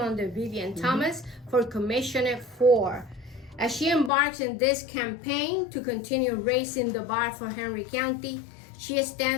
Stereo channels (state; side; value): drops out; right; at 4.1 s